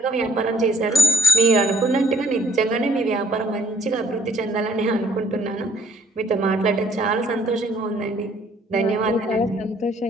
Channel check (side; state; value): both; normal; correlation 0.65